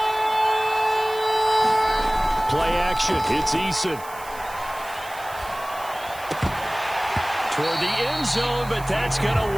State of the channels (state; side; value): noise; right; hiss, 18 dB below the sound